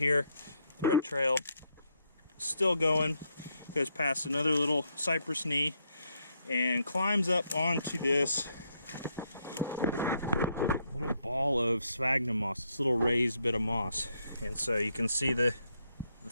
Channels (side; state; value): both; inverted; correlation -0.76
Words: thread trail, still going, goes past another little cypress knee and climbs up onto this little ball of sphagnum moss, this little raised bit of moss. And so you can see the